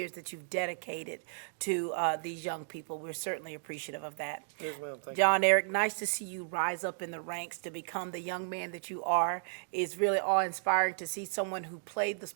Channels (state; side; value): silent; left; digital silence